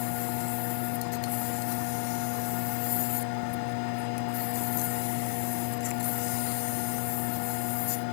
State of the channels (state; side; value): silent; right; digital silence